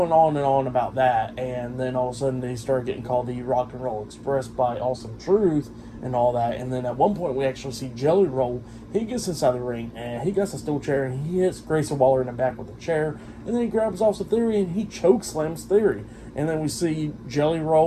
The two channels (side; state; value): both; identical; correlation 1.00